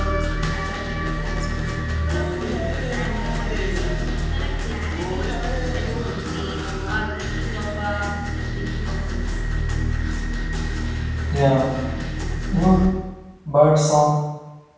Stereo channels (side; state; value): both; identical; correlation 1.00